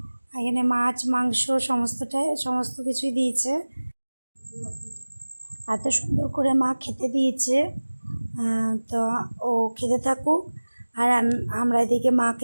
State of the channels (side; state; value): both; inverted; correlation -1.00